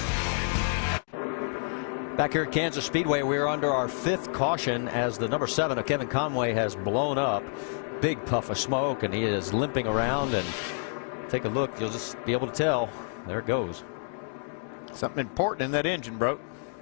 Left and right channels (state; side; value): silent; right; 59 dB below the other